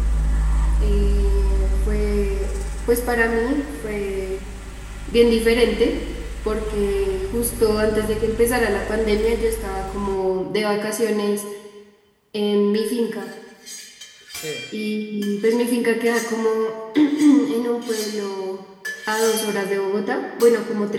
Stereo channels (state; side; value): identical; both; correlation 1.00